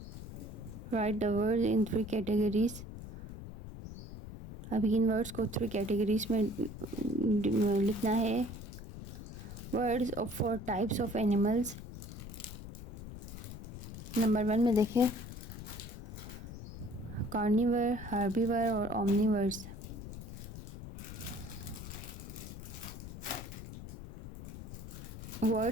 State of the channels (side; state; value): left; noise; rumble, 10 dB below the sound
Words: right the word in 3 कैटेगरीज। अब इन वर्ड्स को 3 कैटेगरीज में लिखना है। Words for types of animals. Number 1 में देखें कार्निवर, हार्बीवर और Omniverse.